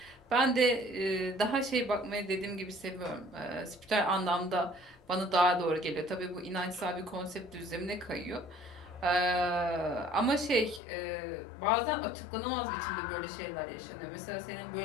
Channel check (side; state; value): right; drops out; at 10.8 s